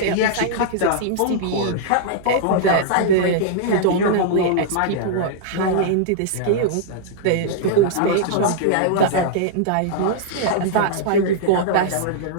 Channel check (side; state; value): both; different; correlation -0.02